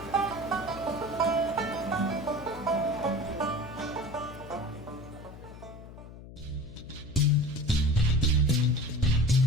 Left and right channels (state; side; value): noise; left; hum, 15 dB below the sound